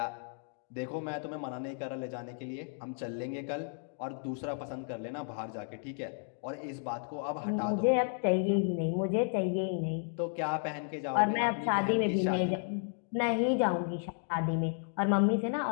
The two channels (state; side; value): silent; right; 56 dB below the other